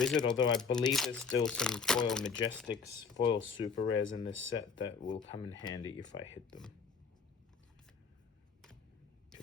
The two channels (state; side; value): quieter; right; 5.5 dB